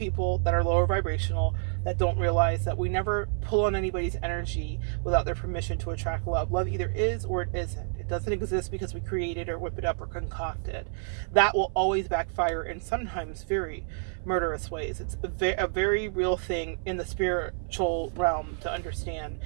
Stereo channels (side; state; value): left; silent; 58 dB below the other